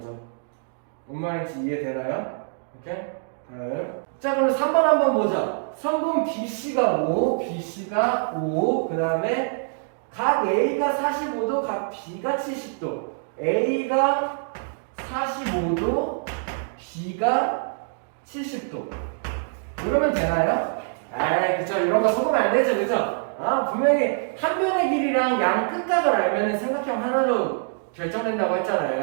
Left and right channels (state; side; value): silent; left; digital silence